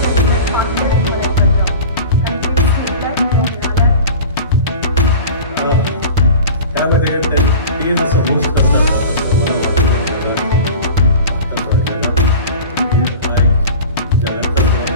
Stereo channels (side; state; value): both; inverted; correlation -0.36